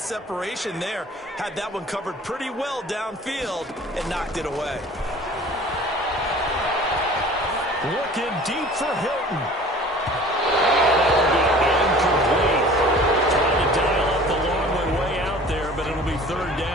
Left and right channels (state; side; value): normal; both; correlation 0.46